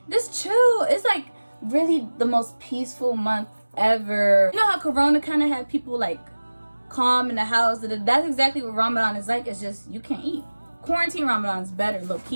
just chill. It's like really the most peaceful month ever. You know how Corona kind of had people like calm in the house? That's exactly what Ramadan is like. It's just you can't eat. Quarantine Ramadan is better, low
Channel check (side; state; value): both; inverted; correlation -1.00